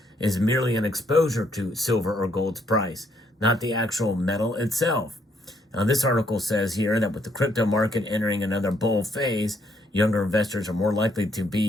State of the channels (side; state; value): both; normal; correlation 0.71